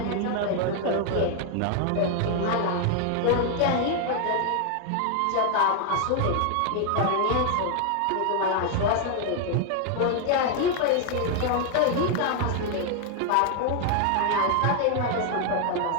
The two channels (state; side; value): different; both; correlation 0.00